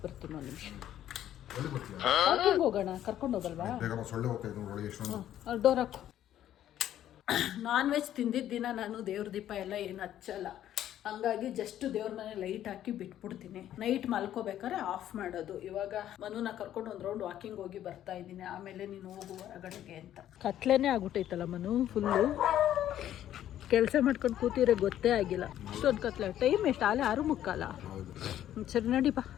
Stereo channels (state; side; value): quieter; right; 11.7 dB